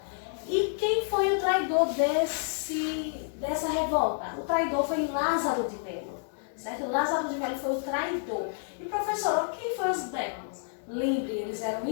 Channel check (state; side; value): silent; right; digital silence